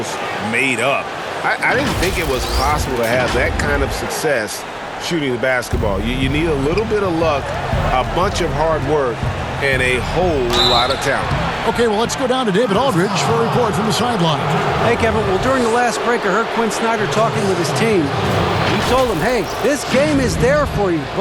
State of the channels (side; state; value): both; identical; correlation 1.00